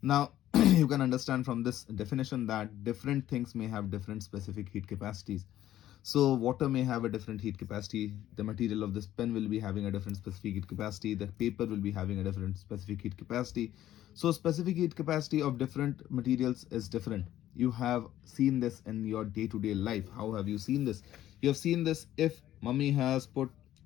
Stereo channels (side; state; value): right; quieter; 12.9 dB